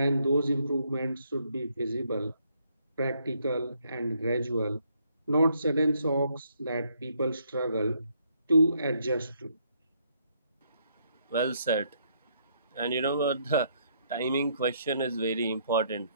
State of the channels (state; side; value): inverted; both; correlation -0.71